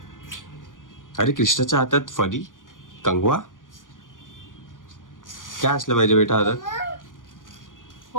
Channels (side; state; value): right; late; 0.88 ms